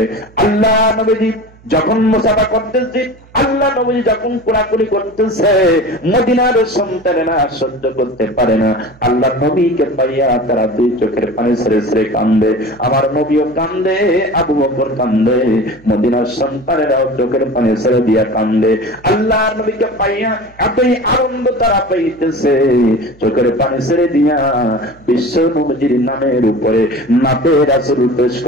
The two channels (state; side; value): noise; right; hum, 26 dB below the sound